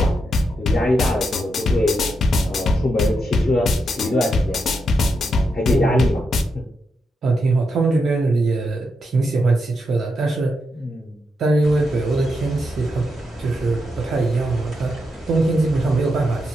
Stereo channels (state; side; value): normal; both; correlation 0.84